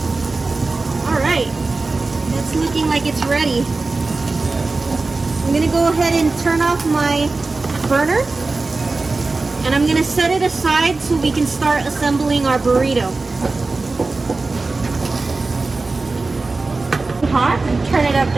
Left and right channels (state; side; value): quieter; left; 3.6 dB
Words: Alright. It's looking like it's ready. I'm going to go ahead and turn off my burner. And I'm going to set it aside so we can start assembling our burrito. Hot, and turn it up